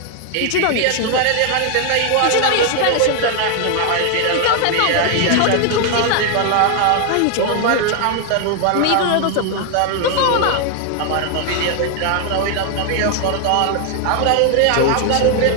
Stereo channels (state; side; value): different; both; correlation 0.00